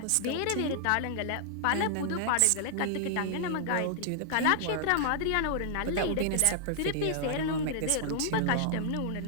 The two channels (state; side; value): different; both; correlation -0.01